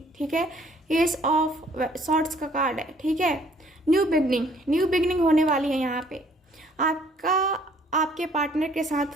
ठीक है। एस ऑफ सॉर्ड्स का कार्ड है, ठीक है। न्यू बिगनिंग होने वाली है यहाँ पे। आपके पार्टनर के साथ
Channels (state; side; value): normal; both; correlation 0.60